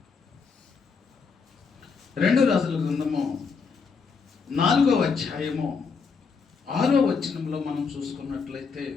4వ అధ్యాయము 6వ వచనంలో మనం చూసుకున్నట్లయితే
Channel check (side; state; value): right; quieter; 5.3 dB